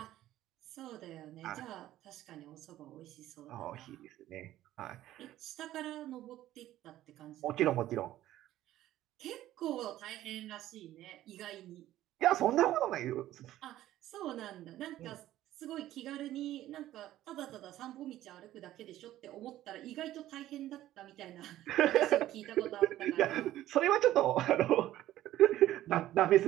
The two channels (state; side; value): quieter; left; 14.0 dB